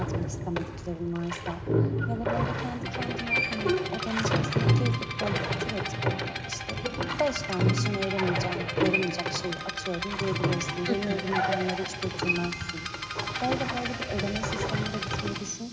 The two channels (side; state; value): both; identical; correlation 1.00